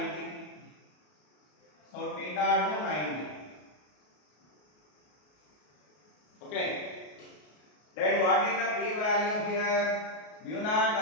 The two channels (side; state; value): right; late; 33 ms